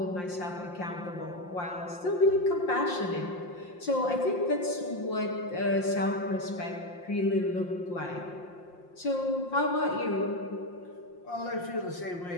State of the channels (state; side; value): late; right; 5.7 ms